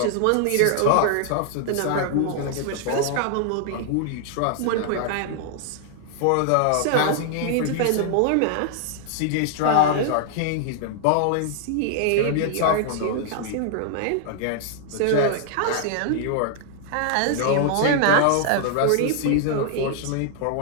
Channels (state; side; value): different; both; correlation 0.00